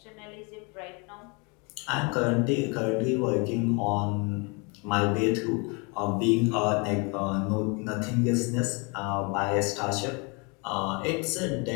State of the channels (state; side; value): quieter; right; 31.6 dB